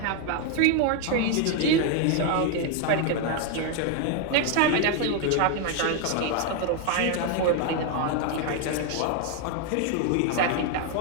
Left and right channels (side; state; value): both; different; correlation 0.01